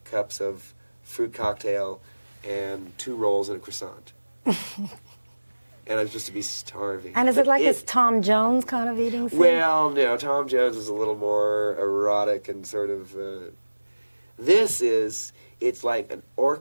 cups of fruit cocktail, and 2 rolls and a croissant. And I'm supposed to be starving. And is it like this Tom Jones kind of eating scene? Well, no, Tom Jones is a little more erotic and sort of... it's like an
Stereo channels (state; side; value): inverted; both; correlation -1.00